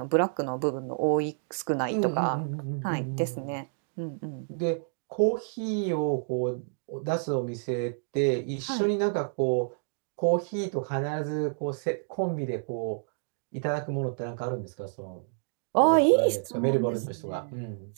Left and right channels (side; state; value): left; silent; digital silence